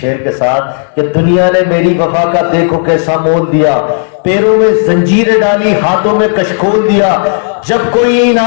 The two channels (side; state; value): right; silent; digital silence